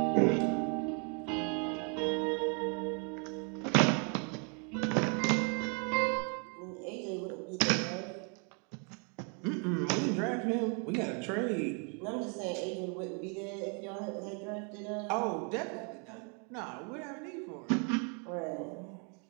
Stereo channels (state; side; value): quieter; left; 37.2 dB